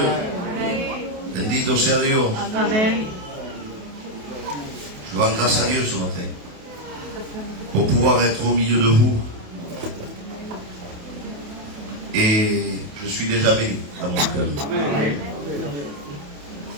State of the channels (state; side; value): late; left; 28 ms